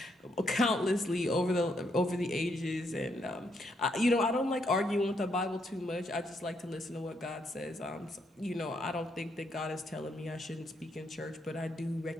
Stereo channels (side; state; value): both; normal; correlation 0.76